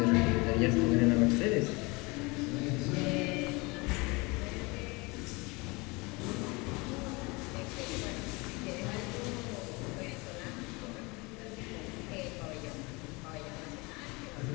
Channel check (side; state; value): right; quieter; 26.1 dB